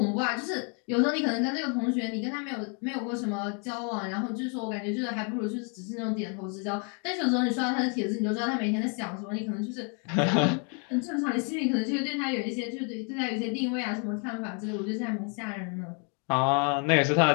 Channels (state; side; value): quieter; right; 38.2 dB